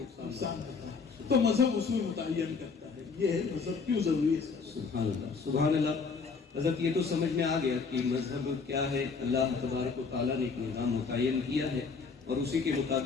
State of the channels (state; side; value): quieter; right; 5.0 dB